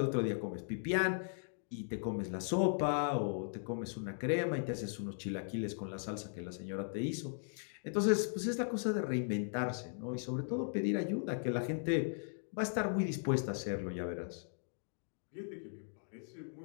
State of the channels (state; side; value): silent; right; digital silence